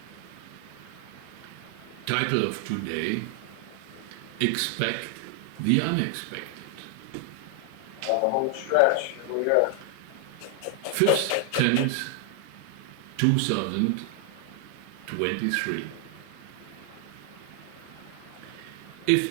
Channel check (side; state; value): both; different; correlation 0.00